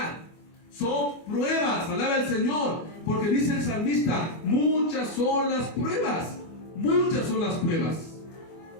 Son pruebas, alaba al Señor, porque dice el salmista: muchas son las pruebas, muchas son las pruebas.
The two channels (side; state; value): right; late; 24 ms